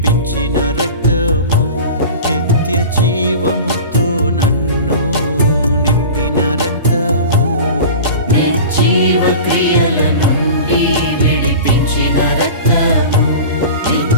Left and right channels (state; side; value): inverted; both; correlation -0.36